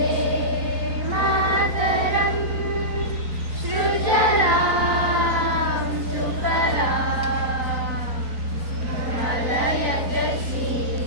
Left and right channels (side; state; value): left; late; 4.0 ms